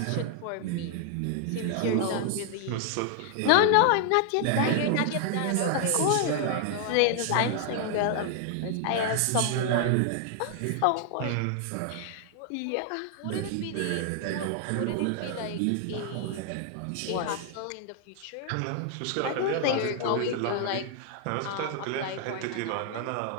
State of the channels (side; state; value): both; different; correlation 0.00